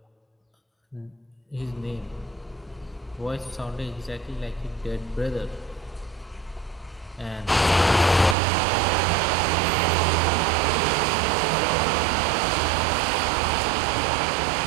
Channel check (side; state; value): left; drops out; at 8.3 s